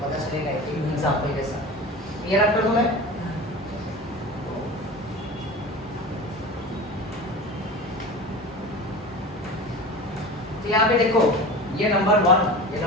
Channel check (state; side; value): normal; both; correlation 0.33